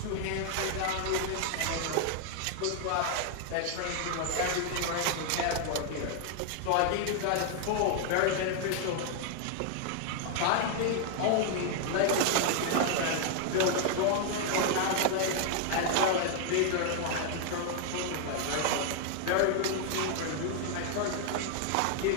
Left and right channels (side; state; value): both; different; correlation 0.00